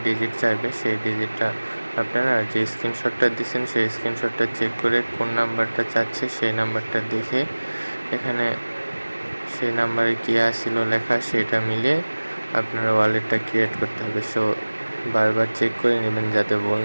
ডিজিট চাইবে, সেই ডিজিটটা আপনারা যে স্ক্রিনশটটা দিচ্ছেন সেই স্ক্রিনশটটা চেক করে কোন নাম্বারটা চাচ্ছে সেই নাম্বারটা দেখে এখানে সেই নাম্বারে কী আসছিল লেখা সেটা মিলিয়ে আপনারা ওয়ালেটটা ক্রিয়েট করতে হবে। সো বারবার চেক করে নেবেন যাতে ভুল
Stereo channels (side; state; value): both; inverted; correlation -1.00